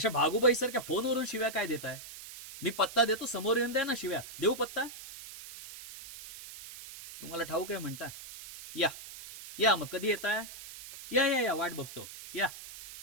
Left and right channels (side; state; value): right; noise; hiss, 14 dB below the sound